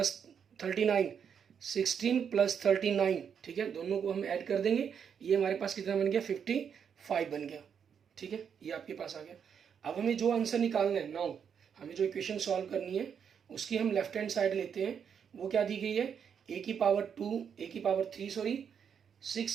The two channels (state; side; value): quieter; left; 7.4 dB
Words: 39, 16 + 39। ठीक है, दोनों को हम ऐड कर देंगे, ये हमारे पास कितना बन गया, 55 बन गया। ठीक है, ये आपके पास आ गया। अब हमें जो आंसर निकालना है, नाउ हमें जो इक्वेशन सॉल्व करनी है उसकी हम लेफ्ट हैंड साइड लेते हैं। वो क्या दी गई है, ए की पावर 3 सॉरी